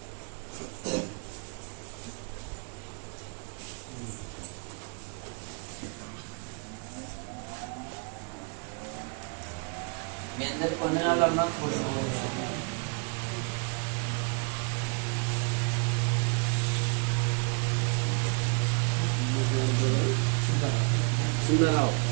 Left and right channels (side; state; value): left; quieter; 37.1 dB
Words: మీ అందరి కొన్ని వాళ్ళమ్మా సుందరరావు